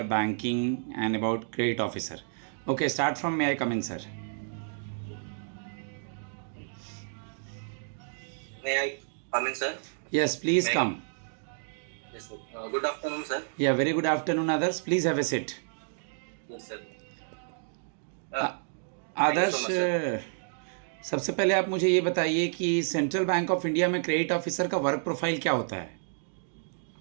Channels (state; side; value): silent; left; digital silence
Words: banking, and about credit officer. Okay, start from may I come in, sir? May I come in, sir? Yes, please May I? come. Yes, sir. Good afternoon, sir. Yeah, very good afternoon, others. Please have a seat. Yes, sir. Uh, Thank you so Adarsh much, sir. सबसे पहले आप मुझे ये बताइए कि central bank of India में credit officer का work profile क्या होता है?